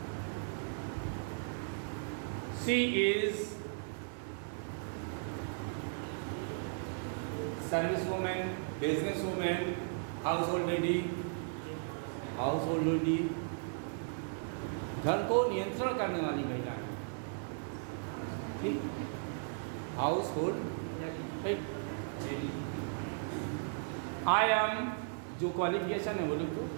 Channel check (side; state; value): left; silent; digital silence